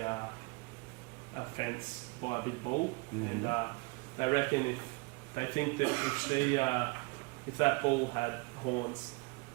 fence by a big bull, and they reckon they think that if that bull had horns,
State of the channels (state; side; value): quieter; left; 27.8 dB